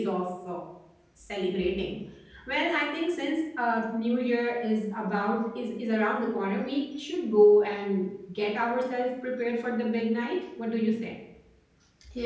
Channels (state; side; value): identical; both; correlation 1.00